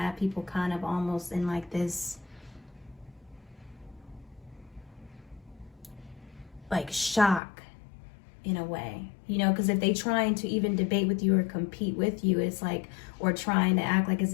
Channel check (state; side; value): drops out; right; at 7.4 s